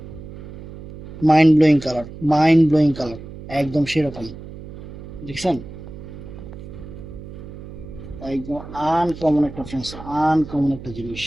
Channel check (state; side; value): noise; right; hum, 13 dB below the sound